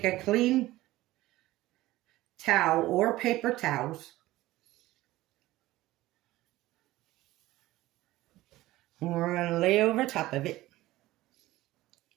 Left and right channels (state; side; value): quieter; left; 17.1 dB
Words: a clean towel or paper towels. And we're going to lay over top of it.